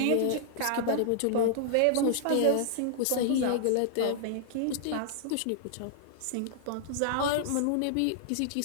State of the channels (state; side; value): different; both; correlation -0.01